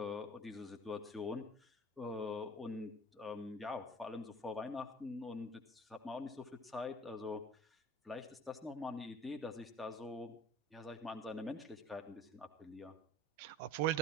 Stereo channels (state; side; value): normal; both; correlation 0.45